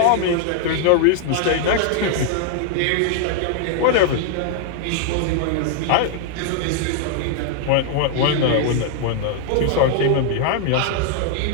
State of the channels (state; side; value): different; both; correlation 0.00